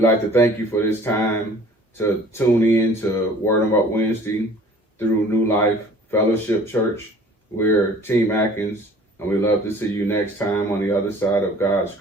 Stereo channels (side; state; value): both; normal; correlation 0.49